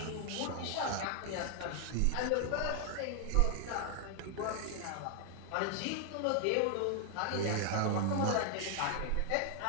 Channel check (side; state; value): both; different; correlation 0.00